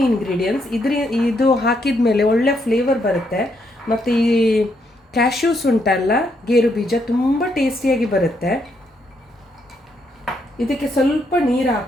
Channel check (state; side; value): normal; both; correlation 0.76